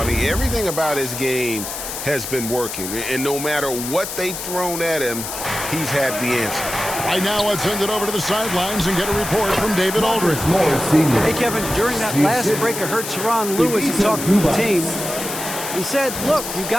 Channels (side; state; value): left; noise; hiss, 7 dB below the sound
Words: mean, everything about his game has been working. And no matter what they've thrown at him, he's had the answer. Right now, let's send it over to the sidelines and get a report from David Aldridge. Hey, Kevin, during that last break, I heard Teron Lewis talk to the team. He said, look, you